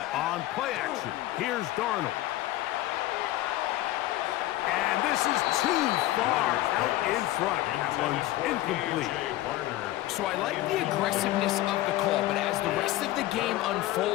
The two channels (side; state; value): right; quieter; 15.8 dB